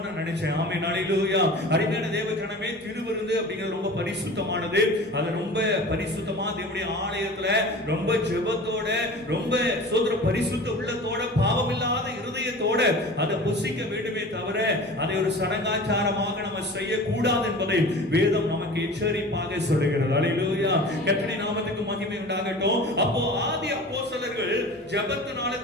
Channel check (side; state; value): both; normal; correlation 0.38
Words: நான் நினைச்சேன். ஆமென், ஹல்லேலூயா. அருமையான தேவஜனமே, திருவிருந்து அப்படிங்கிறது ரொம்ப பரிசுத்தமானது. அது ரொம்ப பரிசுத்தமா தேவனுடைய ஆலயத்துல ரொம்ப ஜெபத்தோட ரொம்ப சோதர பரிசுத்த உள்ளத்தோட பாவமில்லாத இருதயத்தோட அதை புசிக்க வேண்டுமே தவிர அதை ஒரு சடங்காச்சாரமாக நம்ம செய்யக்கூடாது என்பதை வேதம் நமக்கு எச்சரிப்பாக சொல்லுகிறது. ஹல்லேலூயா. கர்த்தருடைய நாமத்துக்கு மகிமை உண்டாகட்டும். அப்போ ஆதி அப்போஸ்தலர்கள் ஜெபத்தினால